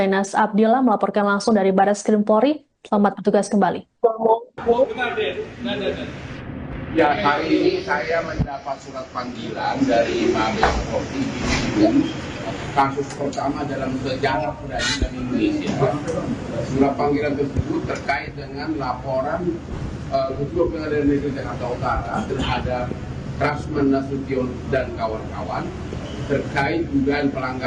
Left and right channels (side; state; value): both; identical; correlation 1.00